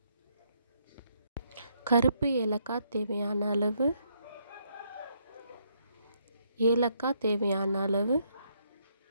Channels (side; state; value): both; inverted; correlation -0.73